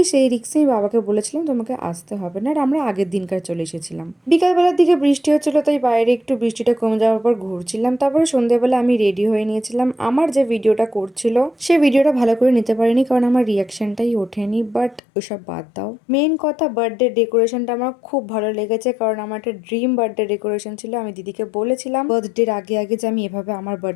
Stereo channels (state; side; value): drops out; right; at 15.0 s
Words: সেই রিক্সেই বাবাকে বলেছিলাম তোমাকে আসতে হবে না। আর আমরা আগের দিনকার চলে এসেছিলাম। বিকালবেলার দিকে বৃষ্টি হচ্ছিল, তাই বাইরে একটু বৃষ্টিটা কমে যাওয়ার পর ঘুরছিলাম। তারপরে সন্ধ্যেবেলা আমি রেডি হয়ে নিয়েছিলাম। আমার যে ভিডিওটা করছিল সেই ভিডিওটা ভালো করে নিতে পারিনি, কারণ আমার রিয়াকশনটাই ওঠেনি। বাট ওসব বাদ দাও, মেইন কথা বার্থডে ডেকোরেশনটা আমার খুব ভালো লেগেছে, কারণ আমার একটা ড্রিম বার্থডে ডেকোরেশন ছিল। আমি দিদিকে বলেছিলাম বার্থডের আগে আগে যে আমি এভাবে আমার